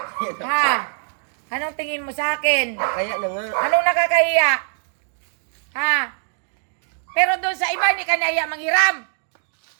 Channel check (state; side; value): silent; left; digital silence